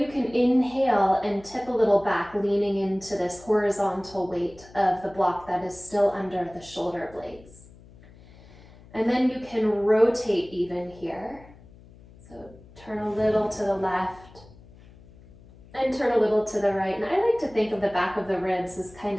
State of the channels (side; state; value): left; noise; hum, 23 dB below the sound